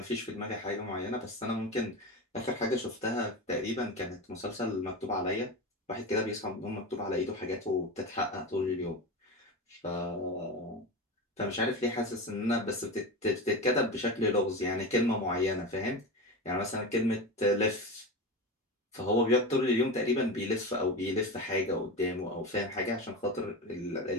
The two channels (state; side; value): normal; both; correlation 0.23